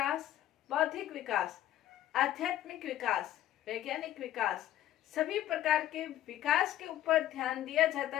बौद्धिक विकास, आध्यात्मिक विकास, वैज्ञानिक विकास, सभी प्रकार के विकास के ऊपर ध्यान दिया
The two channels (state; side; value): quieter; right; 12.7 dB